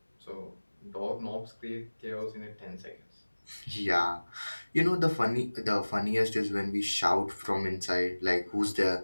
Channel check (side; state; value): both; inverted; correlation -1.00